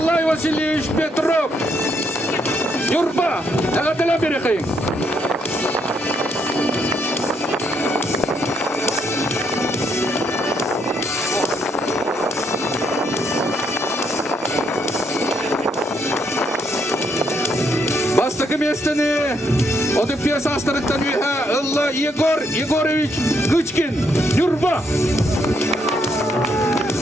Васильевич Петров. Юрба, дәділі берекең. Бастықы местені Одыпия састырықтан үйе ылла Егор Егорович Гычкин. Юрба.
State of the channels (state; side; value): normal; both; correlation 0.74